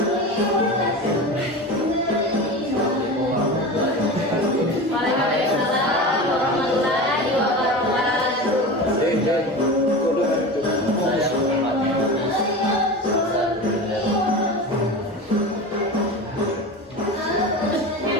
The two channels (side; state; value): both; normal; correlation 0.29